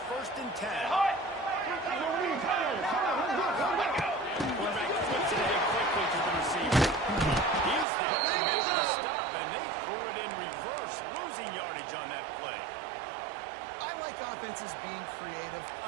1st and 10. Quarterback flips it ahead quickly to the receiver. He's there to make the stop, and they threw it in reverse, losing yardage on that play. I like offenses being creative.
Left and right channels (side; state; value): left; drops out; at 7.9 s